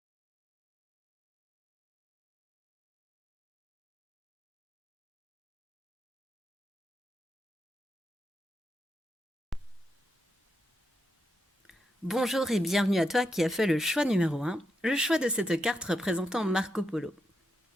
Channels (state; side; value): normal; both; correlation 0.83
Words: Bonjour et bienvenue à toi qui as fait le choix numéro 1, le choix de cette carte représentant Marco Polo.